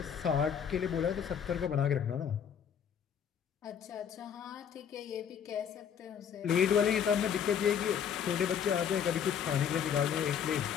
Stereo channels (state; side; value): quieter; right; 8.0 dB